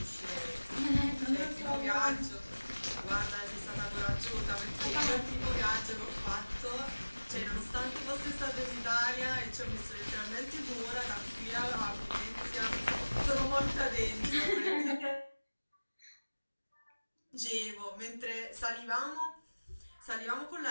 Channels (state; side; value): inverted; both; correlation -1.00